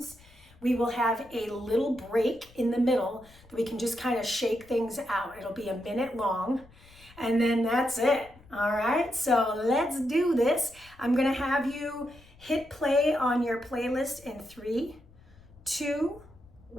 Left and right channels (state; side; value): noise; left; rumble, 25 dB below the sound